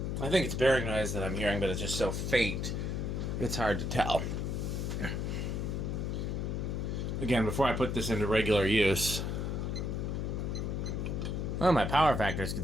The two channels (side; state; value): left; noise; hum, 1 dB below the sound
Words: I think it's bearing noise that I'm hearing, but it's just so faint, it's hard to tell. Again, before I put this into regular use... Well, my power factor is